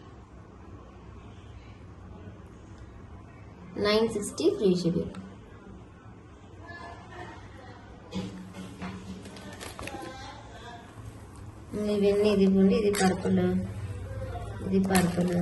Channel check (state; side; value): identical; both; correlation 1.00